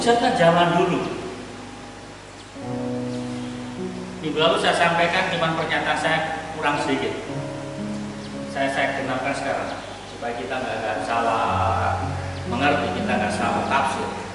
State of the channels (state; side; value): identical; both; correlation 1.00